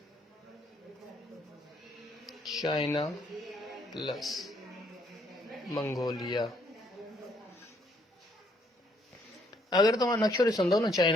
China plus Mongolia. अगरि तव्हां नक्शो ॾिसंदव न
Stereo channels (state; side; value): normal; both; correlation 0.68